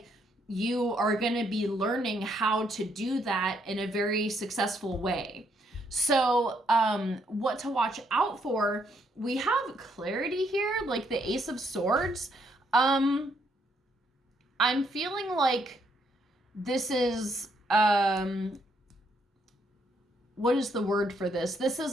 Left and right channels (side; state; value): both; normal; correlation 0.73